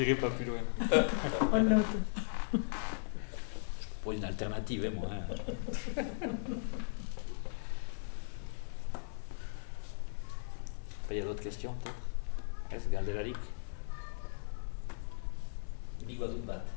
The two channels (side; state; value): right; silent; 53 dB below the other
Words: pas plus loin. On note. Je propose une alternative, moi. Il y a d'autres questions, peut-être? Est-ce Galderarik? Bigo dut bat.